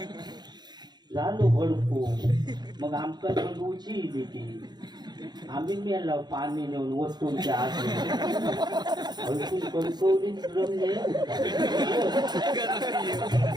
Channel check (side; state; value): left; late; 0.20 ms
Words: झालो भडको. मग आमका भडवूची देते. आम्ही मेला पाणी नेऊन वस्तूंच्या आत हलकून कणकवलीच रमले